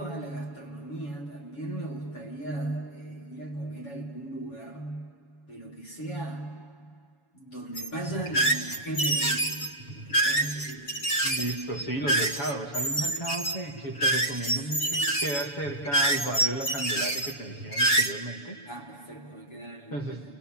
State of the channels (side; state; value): right; late; 7.1 ms